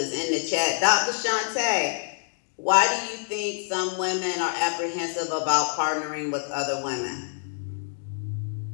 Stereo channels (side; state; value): right; silent; digital silence